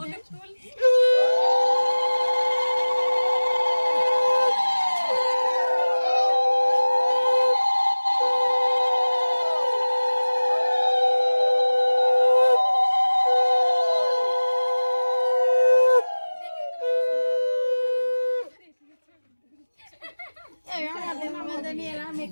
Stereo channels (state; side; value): inverted; both; correlation -1.00